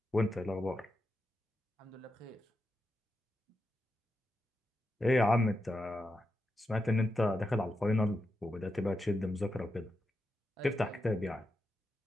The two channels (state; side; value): normal; both; correlation 0.87